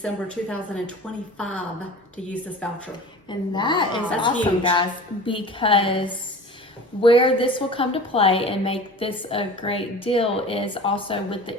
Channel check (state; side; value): normal; both; correlation 0.38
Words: 2025 to use this voucher. And that is That's awesome, huge. guys, because where this will come to play and make this a great deal is also with the